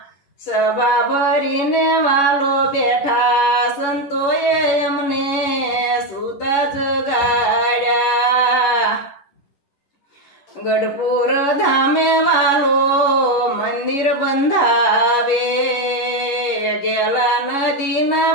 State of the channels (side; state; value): right; late; 11 ms